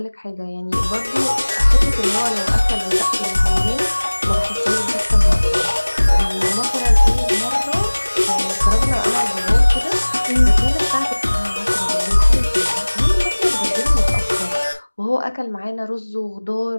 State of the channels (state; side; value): inverted; both; correlation -1.00